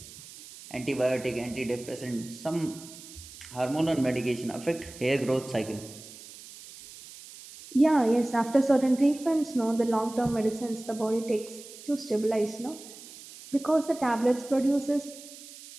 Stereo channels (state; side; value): noise; right; hiss, 17 dB below the sound